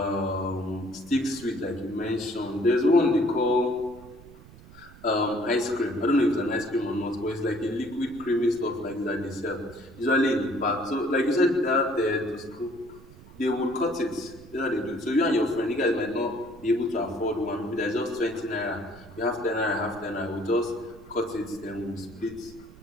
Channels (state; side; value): noise; right; rumble, 20 dB below the sound